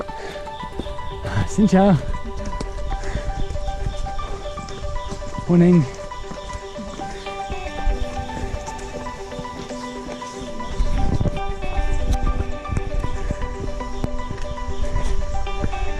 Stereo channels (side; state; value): both; identical; correlation 1.00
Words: Xin chào. Morning.